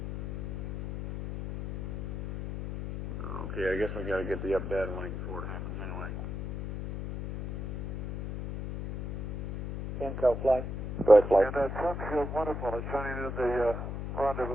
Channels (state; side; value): noise; left; hum, 6 dB below the sound